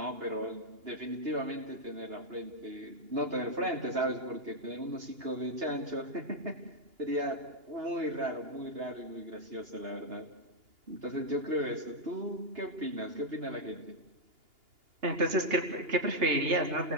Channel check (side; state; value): left; late; 2.8 ms